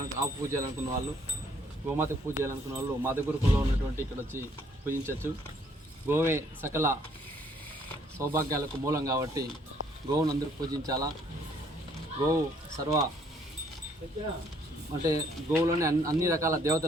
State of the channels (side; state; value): both; normal; correlation 0.64